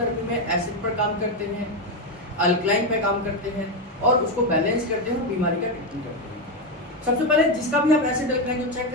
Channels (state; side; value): normal; both; correlation 0.08